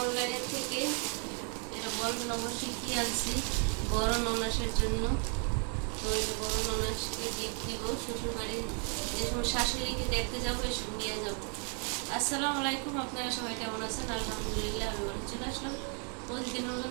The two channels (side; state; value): left; quieter; 39.9 dB